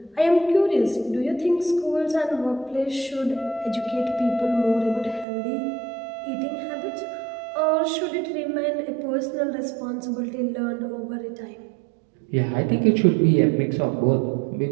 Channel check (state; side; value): drops out; left; at 5.2 s